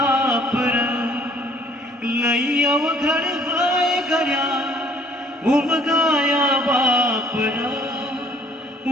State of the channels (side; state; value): both; normal; correlation 0.58